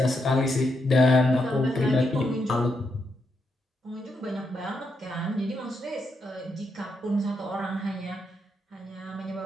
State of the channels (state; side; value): normal; both; correlation 0.81